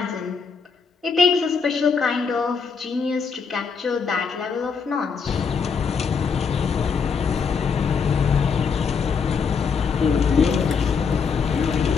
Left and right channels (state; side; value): quieter; right; 5.7 dB